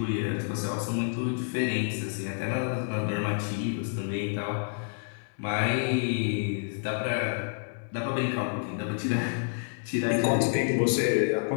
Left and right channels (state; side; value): silent; right; 59 dB below the other